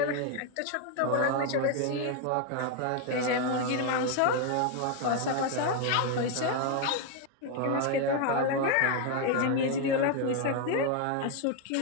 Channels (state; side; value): different; both; correlation 0.01